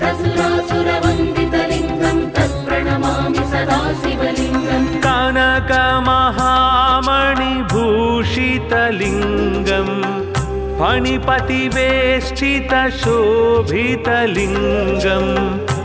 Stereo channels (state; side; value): identical; both; correlation 1.00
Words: तत्प्रणमामि सदा शिवलिङ्गम् कनकमहामणिभूषितलिङ्गम् फणिपतिवेष्टितशोभितलिङ्गम्